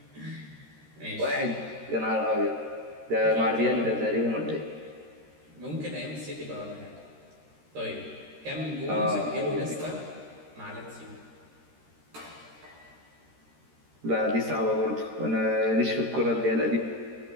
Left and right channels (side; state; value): left; late; 13 ms